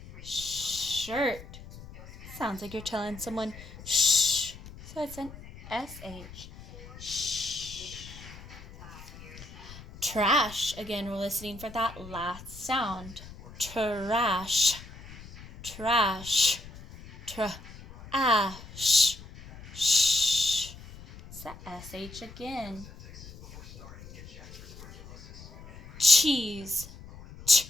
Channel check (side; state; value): left; noise; rumble, 16 dB below the sound